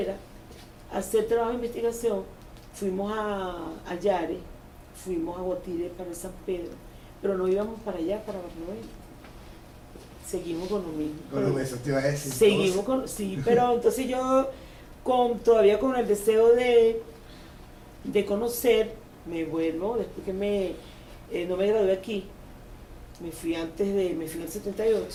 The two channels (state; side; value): identical; both; correlation 1.00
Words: a hacer trabajo de investigación. Fuimos a Yare, fuimos a Guatire para San Pedro, pero no íbamos para allá, para Barlovento. Seguimos con lo mismo. Con eso te iba a decir. Seguimos con, sí, pero entonces yo todavía con el deseo de conocer, me vuelvo, después que no me gradué aquí, me fui en el